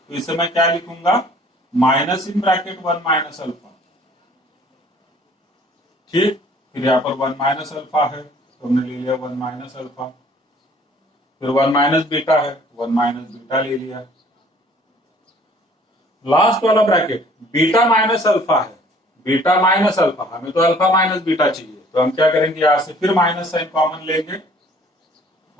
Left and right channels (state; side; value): normal; both; correlation 0.55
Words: तो इसे मैं क्या लिखूंगा? Minus in bracket 1 minus alpha, ठीक। फिर यहाँ पर 1 माइनस अल्फा है तो हमने ले लिया 1 माइनस अल्फा, फिर 1 माइनस बीटा है, 1 माइनस बीटा ले लिया। लास्ट वाला ब्रैकेट बीटा माइनस अल्फा है, बीटा माइनस अल्फा, हमें तो अल्फा माइनस बीटा चाहिए, तो हम क्या करेंगे? यहां से फिर माइनस साइन कॉमन लेंगे